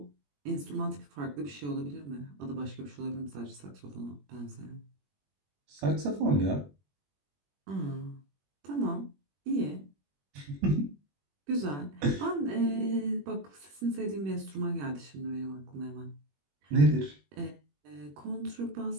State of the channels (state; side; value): late; left; 21 ms